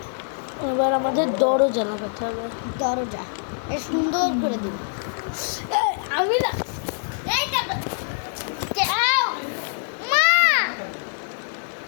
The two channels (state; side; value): silent; right; 58 dB below the other